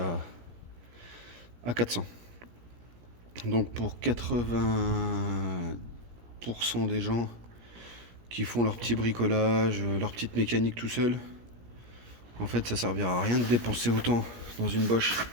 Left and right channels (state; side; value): late; left; 17 ms